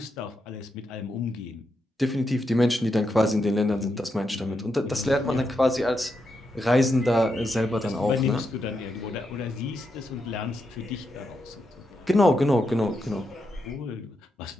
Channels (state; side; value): normal; both; correlation 0.84